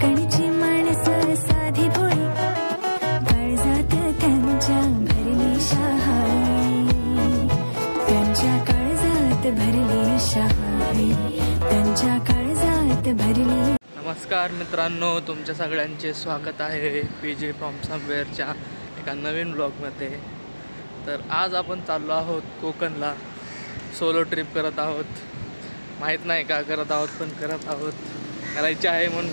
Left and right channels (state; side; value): inverted; both; correlation -1.00